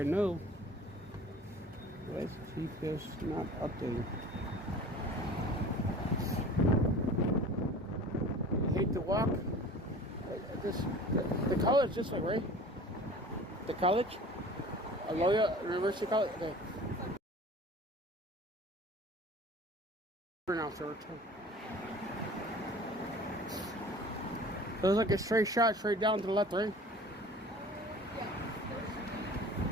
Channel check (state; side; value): normal; both; correlation 0.44